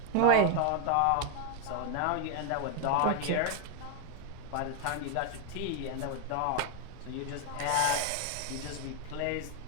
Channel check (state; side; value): different; both; correlation 0.01